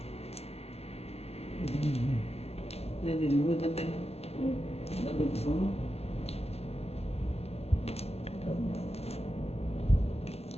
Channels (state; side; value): late; right; 0.30 ms